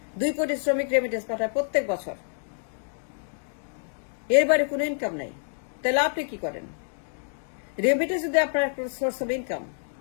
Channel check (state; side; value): silent; right; digital silence